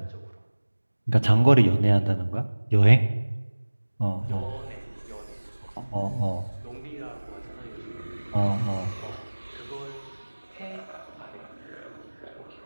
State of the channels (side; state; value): both; inverted; correlation -1.00